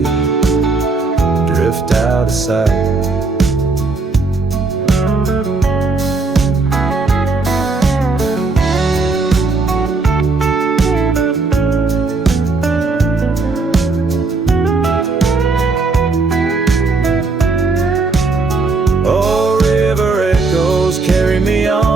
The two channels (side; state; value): left; quieter; 3.8 dB